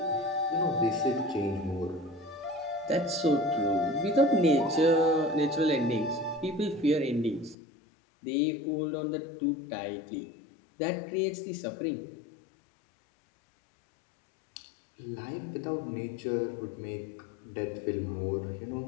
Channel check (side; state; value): right; drops out; at 7.6 s